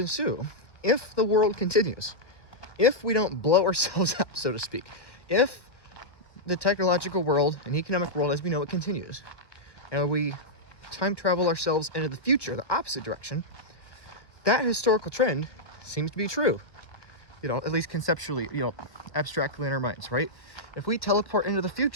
if the world continues, if we don't blow ourselves up, so to speak, if the technological world and economic world as we know it continues, and we time travel ourselves into the future, the opposite direction, that historical trend seems to be true. You know, at least conceptually, you know, abstractly in our minds, right? If we teleport into the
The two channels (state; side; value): late; right; 1.4 ms